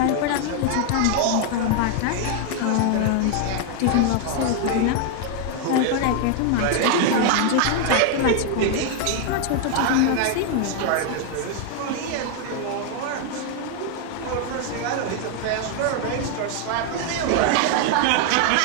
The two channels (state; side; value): different; both; correlation 0.00